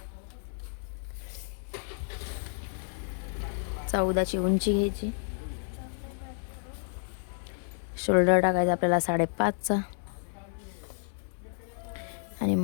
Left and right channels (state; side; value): silent; right; digital silence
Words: चौदाची उंची घ्यायची. शोल्डर टाकायचा आपल्याला 5.5चा, आणि